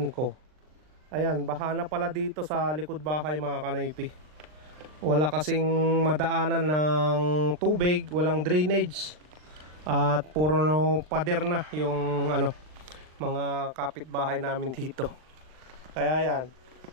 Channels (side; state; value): left; late; 39 ms